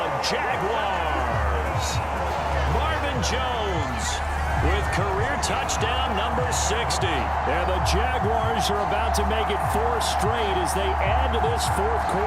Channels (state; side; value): identical; both; correlation 1.00